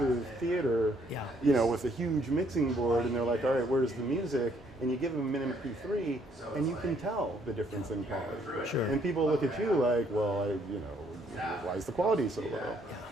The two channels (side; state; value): both; normal; correlation 0.67